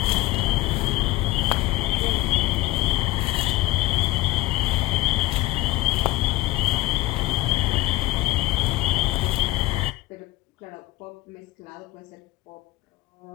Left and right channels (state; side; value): quieter; right; 18.9 dB